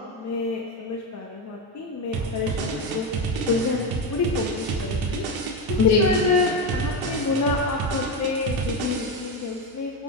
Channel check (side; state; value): both; normal; correlation 0.12